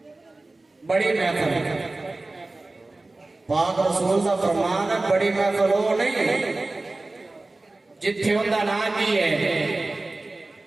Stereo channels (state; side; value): quieter; left; 3.0 dB